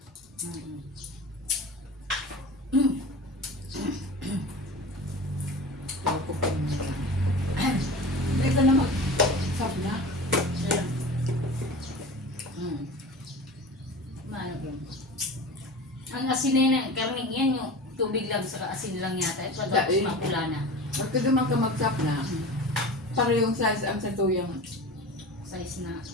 Ang asin na yun, karning yan yung tubig lang sa asin lang yata. Tapos Dahil. mapula na. Pagka duman ka mag-chop na, parehong size ang sa tuyang Size na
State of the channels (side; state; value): both; normal; correlation 0.34